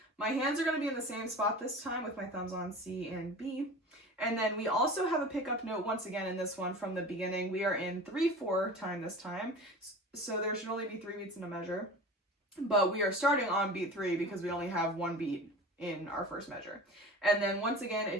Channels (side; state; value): both; normal; correlation 0.36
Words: My hands are going to be in the same spot this time with my thumbs on C and B. And then we also have a pickup note once again in this one from the beginning. We are in 3/4 time this time, so there should only be 3 beats in a measure. But we are starting on beat 3 because we only have 1 beat in our first measure. And then once again,